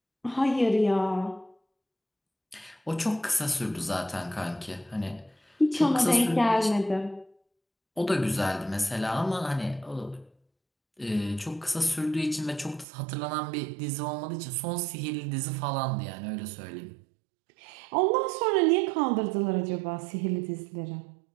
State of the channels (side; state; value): left; drops out; at 12.9 s